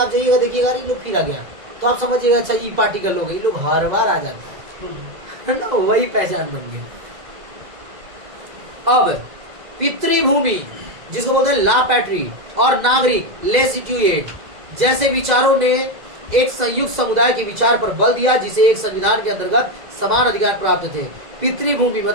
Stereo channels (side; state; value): left; late; 2.0 ms